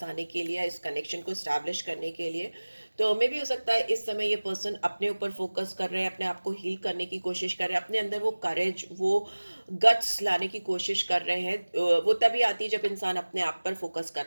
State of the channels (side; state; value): both; inverted; correlation -1.00